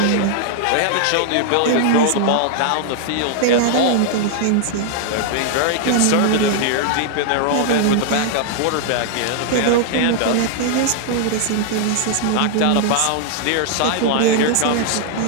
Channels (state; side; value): different; both; correlation 0.00